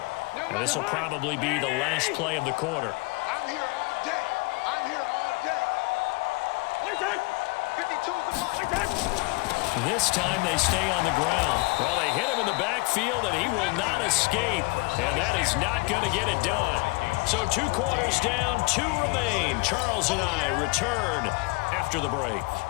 1. And this will probably be the last play of the quarter. I'm here all day. I'm here all day. 52's the mark. This time they stay on the ground. Well, they hit him in the backfield, and he will not escape. And that is not going to get it done. So 2 quarters down, 2 remain. Charles and I return after the break.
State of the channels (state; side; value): quieter; right; 27.3 dB